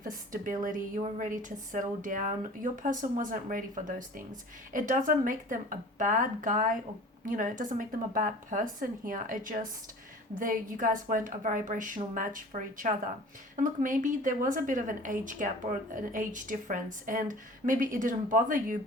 stability, you were ready to settle down. Your person wasn't ready for those things. It doesn't make them a bad guy, or it doesn't make them a bad person here. It just, you guys weren't a vibrational match for each other. And look, maybe there was a bit of an age gap or an age difference, and maybe it didn't bother you,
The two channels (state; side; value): normal; both; correlation 0.43